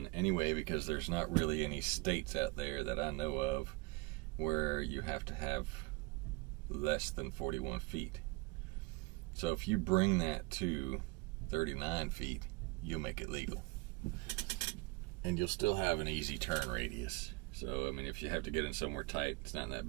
anyway, because there's not really any states out there that I know of where you have to have less than 41 feet. So if you bring that to 39 feet, you'll make it legal. And you'll still have an easy turn radius. So, I mean, if you have to get in somewhere tight, it's not that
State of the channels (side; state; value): left; quieter; 24.9 dB